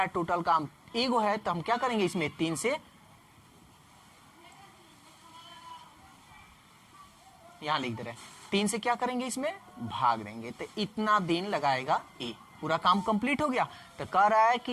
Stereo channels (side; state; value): both; identical; correlation 1.00